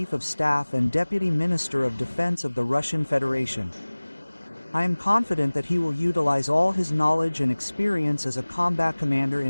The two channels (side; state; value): both; inverted; correlation -1.00